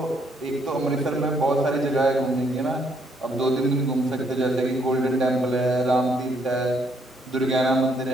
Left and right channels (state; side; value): normal; both; correlation 0.71